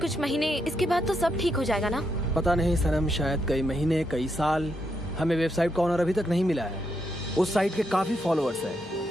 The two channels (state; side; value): normal; both; correlation 0.80